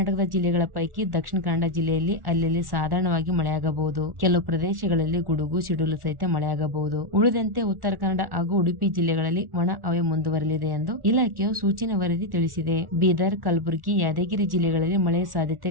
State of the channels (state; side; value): late; left; 1.1 ms